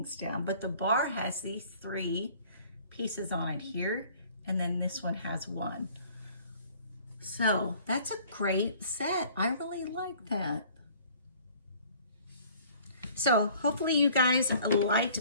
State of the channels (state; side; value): inverted; both; correlation -0.53